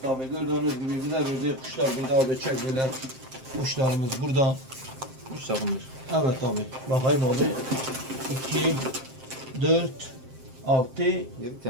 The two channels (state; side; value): late; left; 7.6 ms